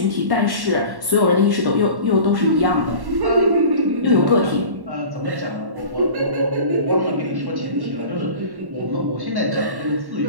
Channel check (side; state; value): left; late; 1.1 ms